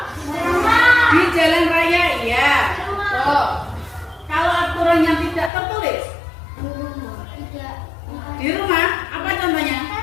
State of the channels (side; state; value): right; drops out; at 5.5 s